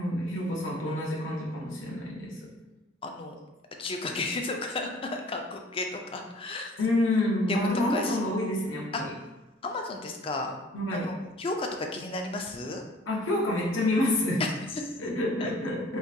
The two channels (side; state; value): both; normal; correlation 0.52